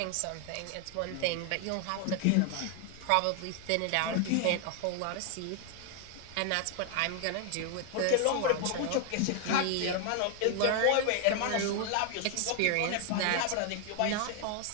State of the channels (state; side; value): different; both; correlation 0.00